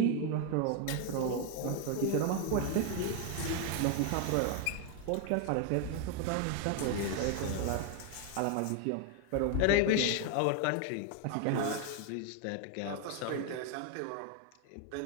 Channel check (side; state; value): both; different; correlation 0.01